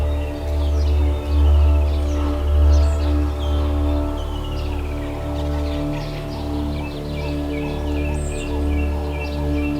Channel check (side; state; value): both; identical; correlation 1.00